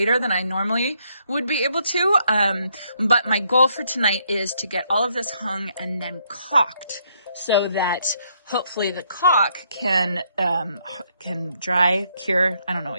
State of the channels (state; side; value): inverted; both; correlation -0.73